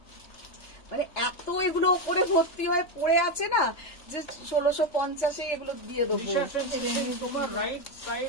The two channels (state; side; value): late; right; 3.3 ms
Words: মানে এত এগুলো ওপরে ভর্তি হয়ে পড়ে আছে না যে 1650-এ এগুলো দিয়ে দেবো। তোমার রাইট